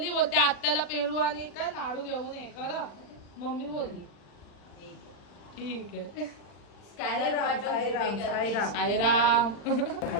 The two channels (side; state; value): right; late; 40 ms